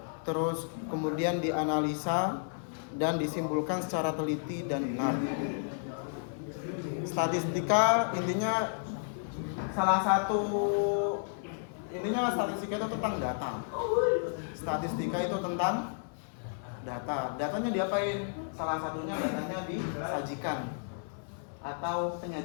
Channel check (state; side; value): silent; right; 56 dB below the other